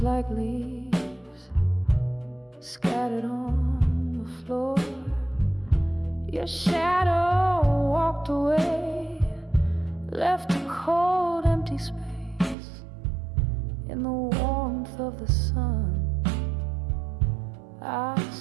like leaves scattered on the floor. Your shadow walked away, left a cold empty space. In the warmth of the sun, I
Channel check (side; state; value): left; drops out; at 12.6 s